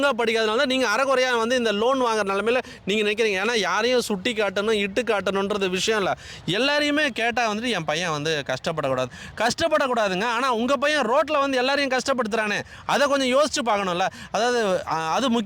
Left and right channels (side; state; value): both; identical; correlation 1.00